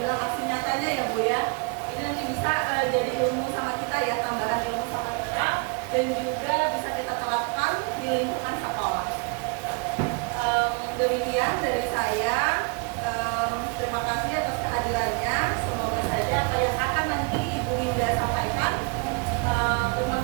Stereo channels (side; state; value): left; quieter; 32.0 dB